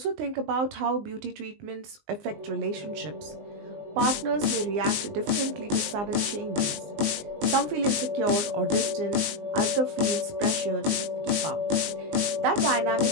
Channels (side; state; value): left; late; 20 ms